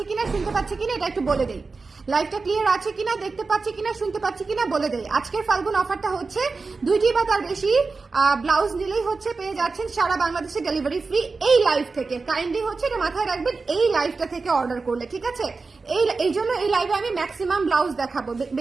কিনা, শুনতে পাচ্ছি কিনা, এটা একটু বলে দেই। লাইভটা ক্লিয়ার আছে কিনা, দেখতে পাচ্ছি কিনা, শুনতে পাচ্ছি কিনা বলে দেই। আজকের ফাল্গুন অফারটা হচ্ছে 2টি বা তার বেশি ব্লাউজ নিলেই হচ্ছে পেয়ে যাচ্ছেন সারা বাংলাদেশে ডেলিভারি ফ্রি এই লাইভ থেকে। কাইন্ডলি হচ্ছে এটা মাথায় রাখবেন এই লাইভটা থেকে অর্ডার করলে, ঠিক আছে? এই জন্য এই লাইভে আমি ম্যাক্সিমাম ব্লাউজ দেখাবো।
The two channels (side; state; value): left; quieter; 4.2 dB